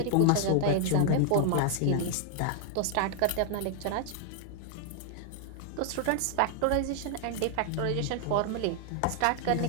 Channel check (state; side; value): different; both; correlation 0.00